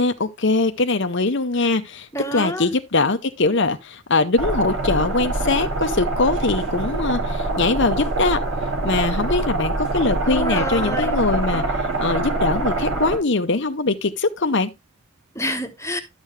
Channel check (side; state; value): both; normal; correlation 0.03